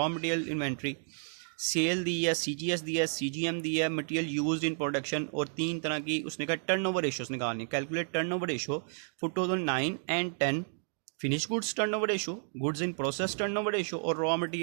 मटेरियल इन्वेंट्री, सेल दी है, CGS दी है, CGM दी है, मटेरियल यूज्ड इन प्रोडक्शन, और 3 तरह की उसने कहा टर्नओवर रेशियोज निकालनी है। Calculate turnover ratio for 2009 and 10, finish goods turnover ratio, goods in process turnover ratio और रॉ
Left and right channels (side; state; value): left; silent; 57 dB below the other